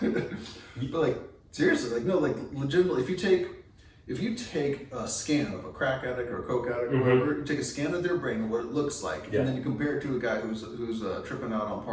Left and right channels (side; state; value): both; identical; correlation 1.00